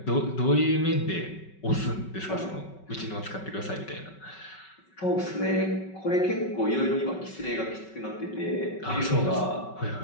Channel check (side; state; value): right; late; 5.3 ms